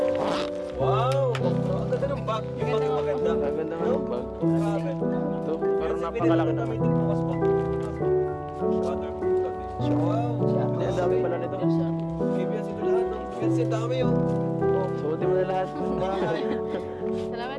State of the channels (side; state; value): both; identical; correlation 1.00